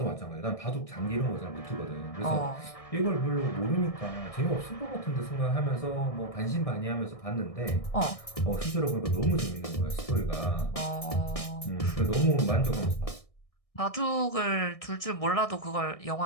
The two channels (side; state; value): right; late; 1.6 ms